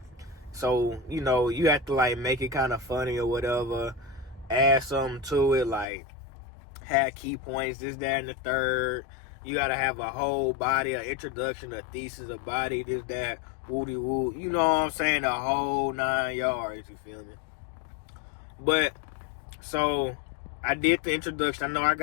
So, you know, you have to like make it kind of funny or whatever, add something to it, like have key points, this, that, and the third. You gotta have a whole body, an introduction, a thesis, a body, this, that, woody woo. You know what I'm saying? The whole 9 yards, you feel me? But, so, I did the introduction. I know I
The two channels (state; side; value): drops out; right; at 5.9 s